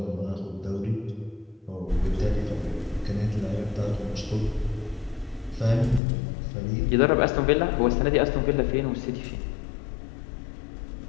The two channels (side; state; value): right; drops out; at 6.0 s